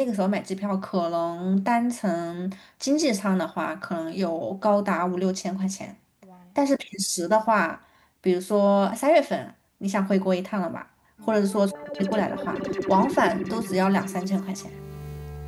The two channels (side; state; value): both; identical; correlation 1.00